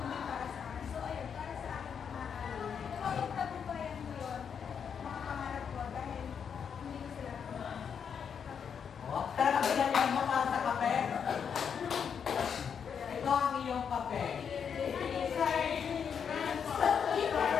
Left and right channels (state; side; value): quieter; right; 7.2 dB